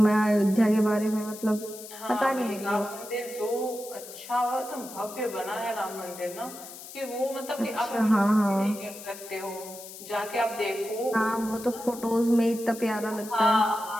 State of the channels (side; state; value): left; noise; hiss, 14 dB below the sound